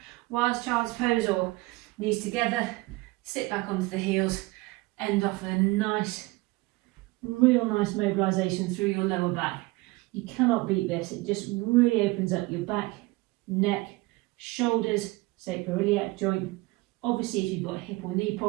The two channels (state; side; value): quieter; left; 22.2 dB